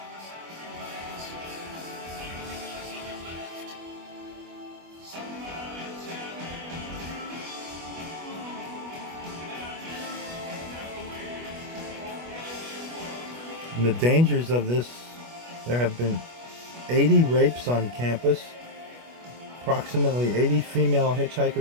And the dangers of this, there have been 80 rapes on campus. Approximately 80 female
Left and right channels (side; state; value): left; late; 25 ms